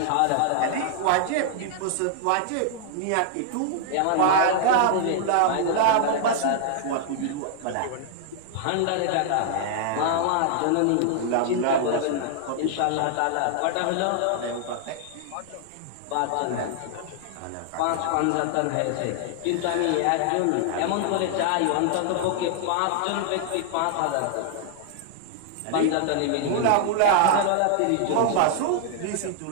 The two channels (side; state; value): both; different; correlation 0.00